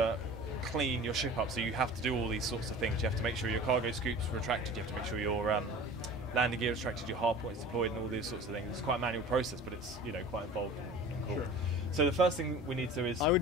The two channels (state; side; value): normal; both; correlation 0.40